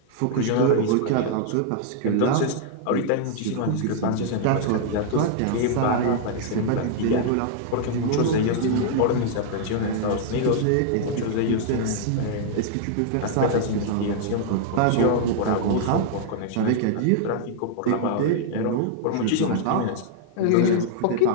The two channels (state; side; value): different; both; correlation -0.01